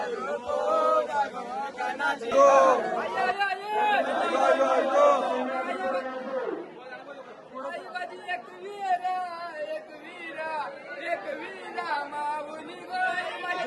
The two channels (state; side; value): identical; both; correlation 1.00